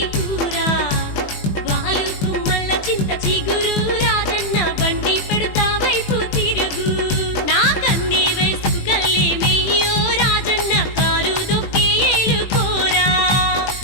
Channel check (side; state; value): right; late; 20 ms